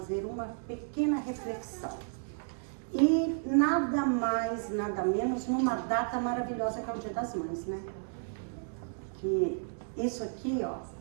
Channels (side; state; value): left; silent; digital silence